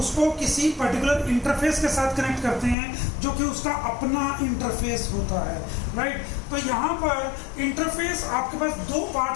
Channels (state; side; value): drops out; right; at 2.8 s